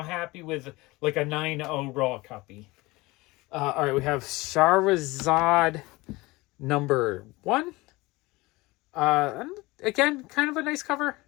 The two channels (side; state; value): right; quieter; 21.8 dB